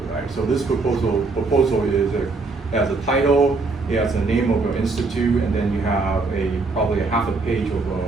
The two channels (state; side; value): quieter; left; 3.8 dB